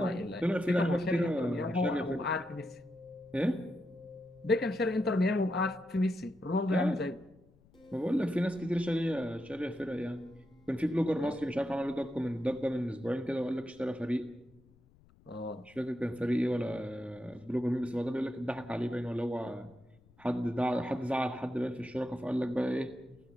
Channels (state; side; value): noise; left; rumble, 28 dB below the sound